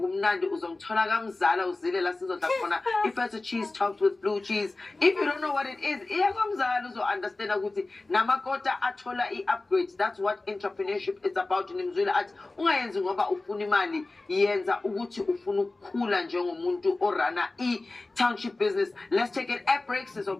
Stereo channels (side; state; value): right; quieter; 3.2 dB